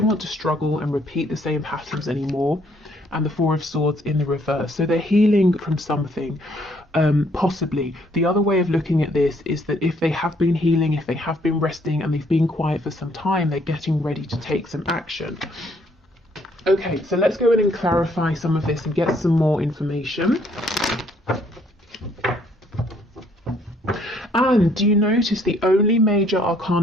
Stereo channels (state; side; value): normal; both; correlation 0.66